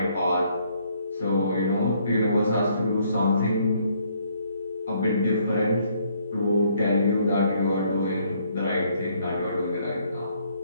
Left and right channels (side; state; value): both; inverted; correlation -0.67